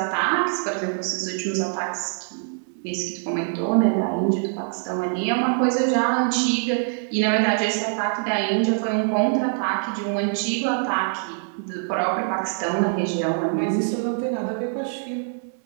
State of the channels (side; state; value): left; silent; 63 dB below the other